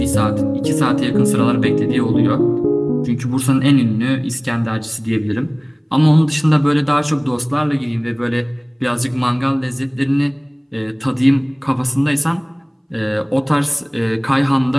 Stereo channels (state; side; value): identical; both; correlation 1.00